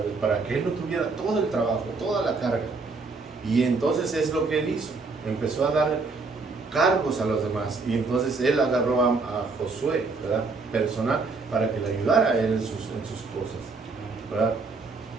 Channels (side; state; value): left; quieter; 4.1 dB